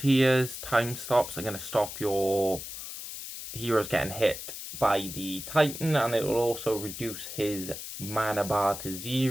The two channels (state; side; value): noise; left; hiss, 9 dB below the sound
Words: Time stops are going to stop your heroes getting hit by the Titan, and it will also reduce his mana bar to